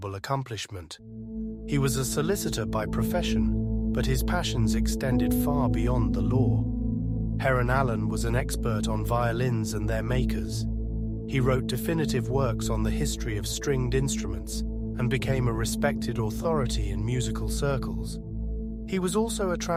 accomplishment. He was a solicitor by profession, but his passions extended far beyond the law. Heron Allen was an expert on violins and their makers. He wrote definitive works on the history of stringed instruments and became a respected authority in musical circles. He was also a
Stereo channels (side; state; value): both; identical; correlation 1.00